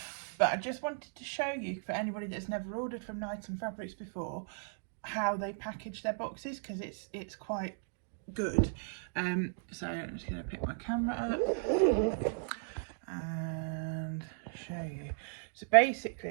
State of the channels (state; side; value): silent; left; digital silence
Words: But I just wanted to show you, for anybody that's never ordered from Knighton Fabrics before, how they package their boxes, because it's quite good. So I'm just going to pick my camera up and show you. So